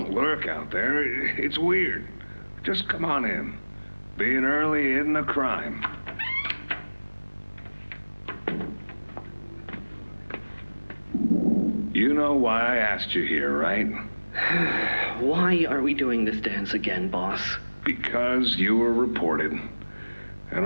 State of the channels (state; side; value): inverted; both; correlation -1.00